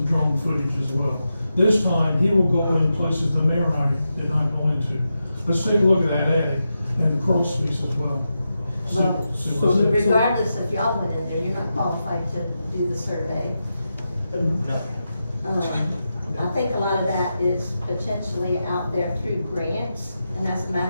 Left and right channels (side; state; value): both; inverted; correlation -0.89